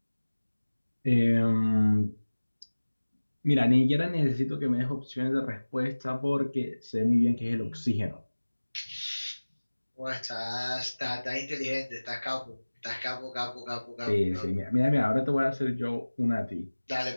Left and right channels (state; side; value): inverted; both; correlation -1.00